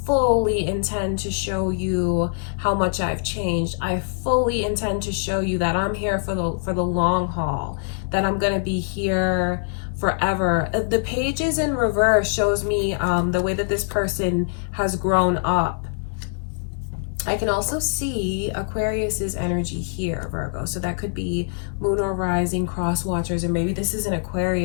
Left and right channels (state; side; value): silent; right; digital silence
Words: intend to show you how much I've changed. I fully intend to show you that I'm here for the long haul, that I'm going to be here forever. The pages in reverse shows me the way that this person has grown up. I can also see Aquarius's energy here, Virgo. So that could be moon or rising, cross watchers, or maybe this is an